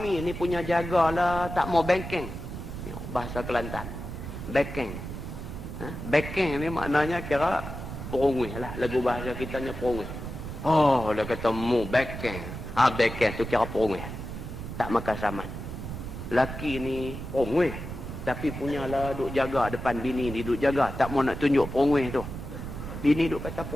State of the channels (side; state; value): right; noise; rumble, 8 dB below the sound